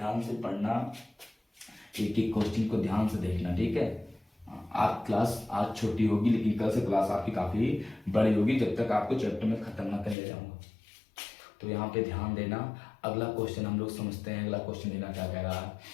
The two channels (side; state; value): right; drops out; at 10.2 s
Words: से पढ़ना, एक एक क्वेश्चन को ध्यान से देखना, ठीक है। आप क्लास आज छोटी होगी, लेकिन कल से क्लास आपकी काफी बड़ी होगी, जब तक आपको चैप्टर में खत्म ना कर ले जाऊंगा। तो यहाँ पे ध्यान देना। अगला क्वेश्चन हम लोग समझते हैं। अगला क्वेश्चन देना क्या कह रहा है,